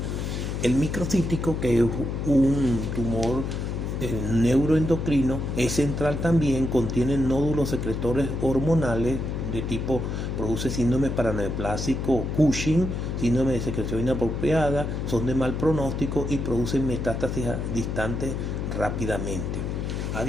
El microcítico, que es un tumor neuroendocrino, es central también, contiene nódulos secretores hormonales de tipo, produce síndrome paraneoplásico Cushing, síndrome de secreción inapropiada, son de mal pronóstico y producen metástasis distantes rápidamente. A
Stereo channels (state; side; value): noise; left; hum, 3 dB below the sound